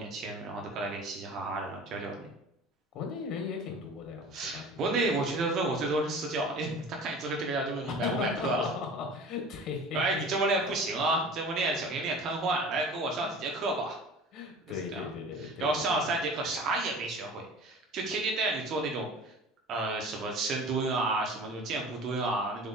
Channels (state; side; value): normal; both; correlation 0.40